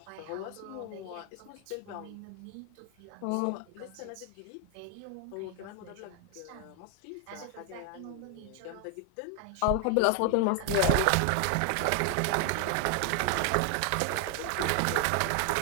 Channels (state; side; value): different; both; correlation 0.00